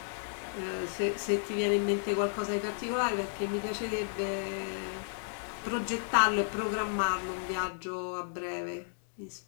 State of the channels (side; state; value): right; silent; digital silence